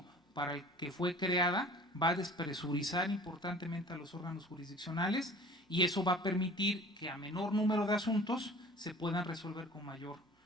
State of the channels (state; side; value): normal; both; correlation 0.44